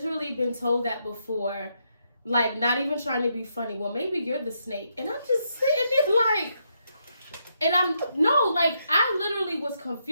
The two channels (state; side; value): inverted; both; correlation -0.78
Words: been told that before, like not even trying to be funny. Well, maybe you're the snake, and I'm just sitting there like, and I literally was